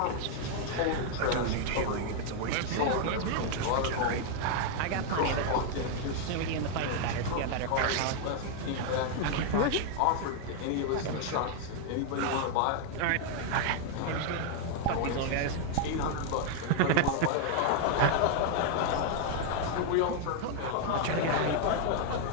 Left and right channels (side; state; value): both; different; correlation 0.00